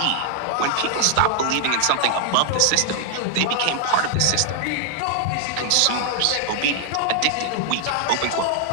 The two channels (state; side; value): different; both; correlation 0.00